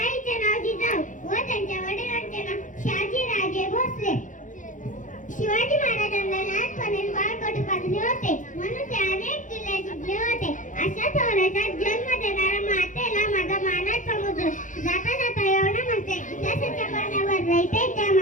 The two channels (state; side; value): late; right; 0.37 ms